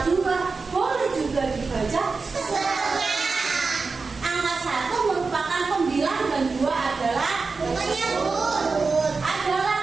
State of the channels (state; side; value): quieter; left; 4.3 dB